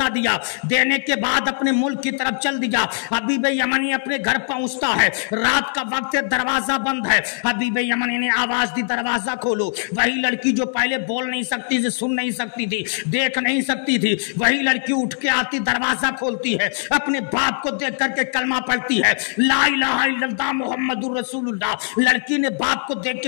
دیا، دینے کے بعد اپنے ملک کی طرف چل دیا۔ حبیب یمنی اپنے گھر پہنچتا ہے، رات کا وقت ہے، دروازہ بند ہے۔ حبیب یمنی نے آواز دی دروازہ کھولو۔ وہی لڑکی جو پہلے بول نہیں سکتی تھی، سن نہیں سکتی تھی، دیکھ نہیں سکتی تھی، وہی لڑکی اٹھ کے آتی، دروازہ کھولتی ہے، اپنے باپ کو دیکھ کر کے کلمہ پڑھتی ہے لا الہ الا اللہ محمد الرسول اللہ۔ لڑکی نے باپ کو دیکھ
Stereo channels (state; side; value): silent; right; digital silence